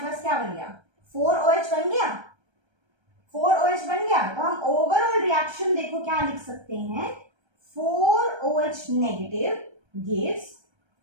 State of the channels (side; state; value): left; late; 1.3 ms